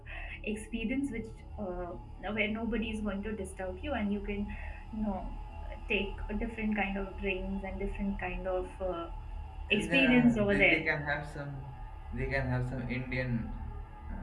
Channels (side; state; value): both; identical; correlation 1.00